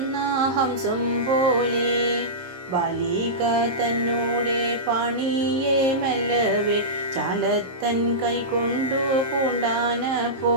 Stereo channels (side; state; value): left; late; 23 ms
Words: ഹംസം പോലെ ബാലിക തന്നോടെ പാണിയെ മെല്ലവേ ചാലത്തൻ കൈകൊണ്ടു